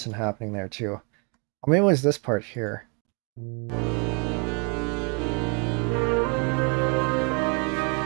happening there too. Or maybe it was this part here.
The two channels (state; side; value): quieter; left; 34.9 dB